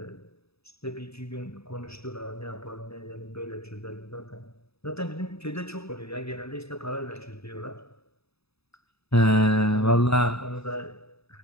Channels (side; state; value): right; late; 0.78 ms